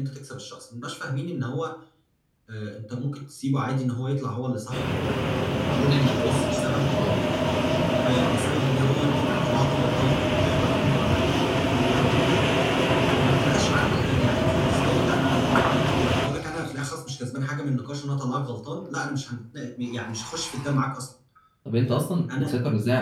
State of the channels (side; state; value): both; identical; correlation 1.00